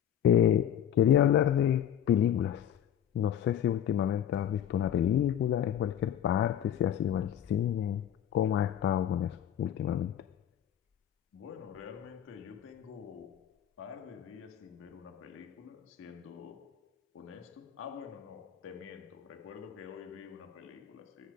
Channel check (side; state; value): right; quieter; 10.0 dB